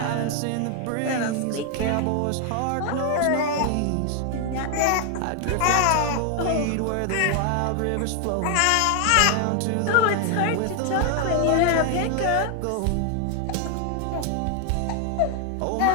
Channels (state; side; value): different; both; correlation 0.00